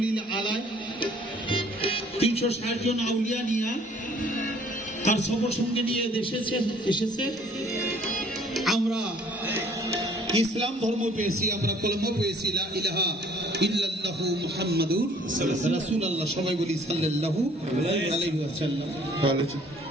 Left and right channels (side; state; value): both; normal; correlation 0.57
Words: আলাইহি 360 জন আউলিয়া নিয়ে তার সফর সঙ্গে নিয়ে এসেছে। আমরা ইসলাম ধর্ম পেয়েছি, আমরা কলমা পেয়েছি, লা ইলাহা ইল্লাল্লাহু মুহাম্মাদুর রাসূলুল্লাহ। সবাই বলি সাল্লাল্লাহু আলাইহি ওয়াসাল্লাম।